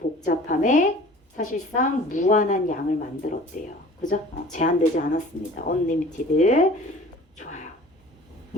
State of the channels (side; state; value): both; normal; correlation 0.46